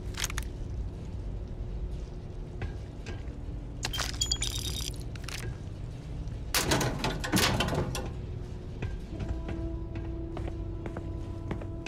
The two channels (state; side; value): identical; both; correlation 1.00